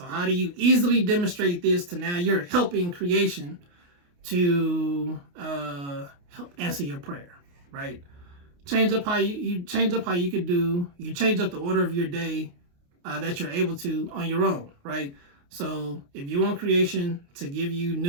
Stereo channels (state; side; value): late; left; 28 ms